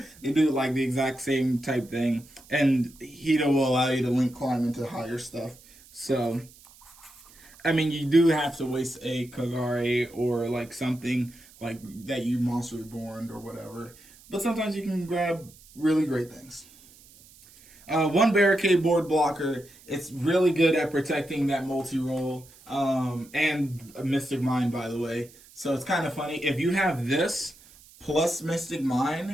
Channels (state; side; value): noise; right; hiss, 24 dB below the sound